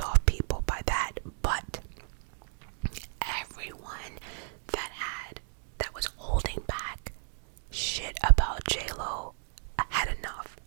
off people by that, but everyone that was holding back shit about J-Lo had enough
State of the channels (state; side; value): silent; left; 56 dB below the other